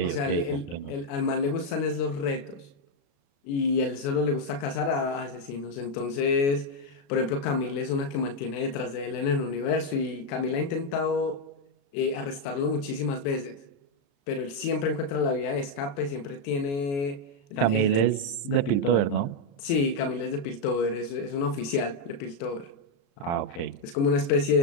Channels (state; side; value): late; right; 36 ms